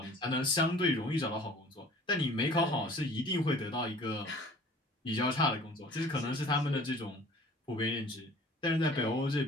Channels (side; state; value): both; normal; correlation 0.49